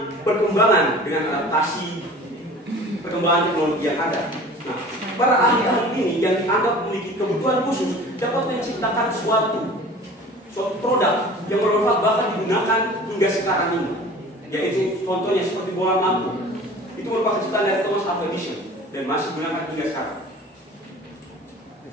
perkembangan dengan adaptasi perkembangan teknologi yang ada. Nah, para ahli-ahli ini yang dianggap memiliki kebutuhan khusus dapat menciptakan suatu produk yang bermanfaat bahkan digunakan hingga sekarang ini. Yaitu contohnya seperti bola lampu. Itu merupakan ciptaan dari Thomas Alva Edison dan masih digunakan hingga sekarang.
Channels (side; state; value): both; normal; correlation 0.43